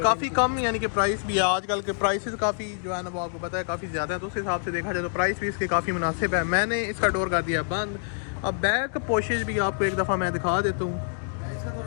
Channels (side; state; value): right; silent; 61 dB below the other